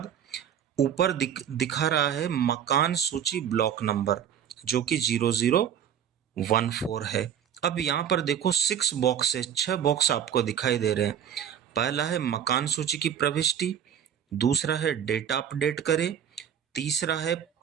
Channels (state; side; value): quieter; left; 9.0 dB